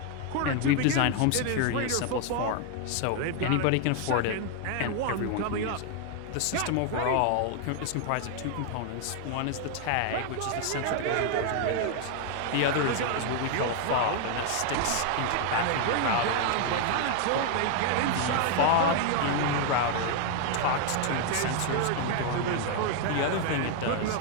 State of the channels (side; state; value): both; different; correlation 0.00